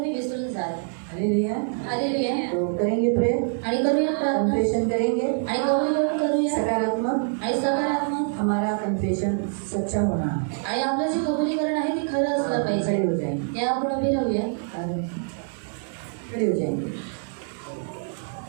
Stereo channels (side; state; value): left; silent; 62 dB below the other